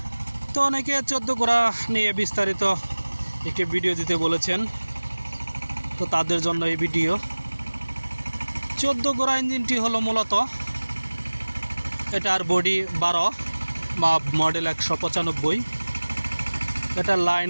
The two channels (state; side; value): inverted; both; correlation -1.00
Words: তো অনেকে 14 গোড়া নিয়ে বিস্তারিত একটি ভিডিও দিতে বলেছেন, তো তাদের জন্য এই ভিডিও। 14 গোড়া ইঞ্জিনটি হলো মূলত এটার বডি 12 বা মডেল 195, এটা